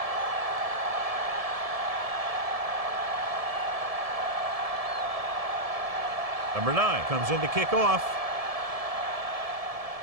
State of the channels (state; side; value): late; left; 1.7 ms